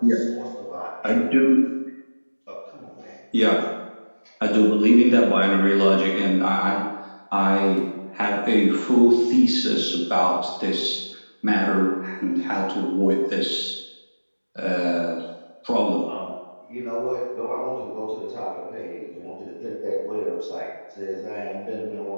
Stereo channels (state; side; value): inverted; both; correlation -1.00